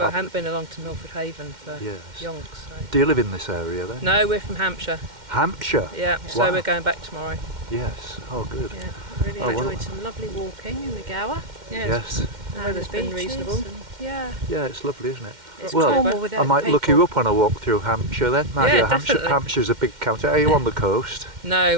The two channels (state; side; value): late; left; 2.1 ms